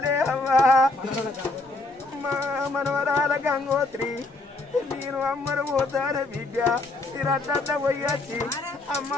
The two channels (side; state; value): right; quieter; 3.0 dB